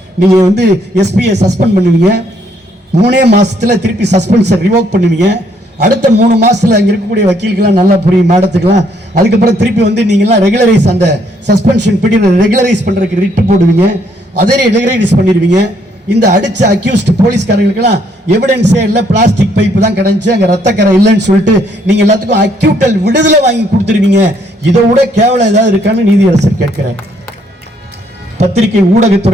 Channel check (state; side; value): normal; both; correlation 0.69